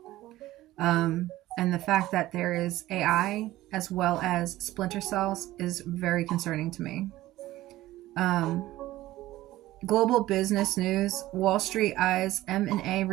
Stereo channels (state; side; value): quieter; left; 16.1 dB